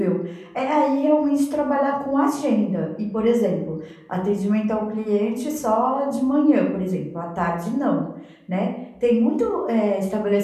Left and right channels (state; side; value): identical; both; correlation 1.00